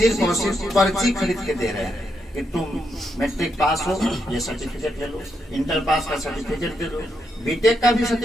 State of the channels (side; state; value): both; normal; correlation 0.81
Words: और सिर्फ पर्ची खरीद के दे रहे हैं कि तुम मैट्रिक पास हो, ये सर्टिफिकेट ले लो, इंटर पास का सर्टिफिकेट दे दो, बीटेक का भी